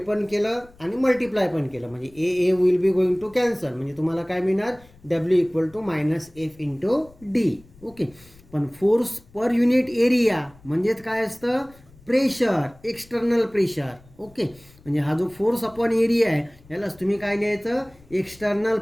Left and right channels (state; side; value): noise; left; rumble, 26 dB below the sound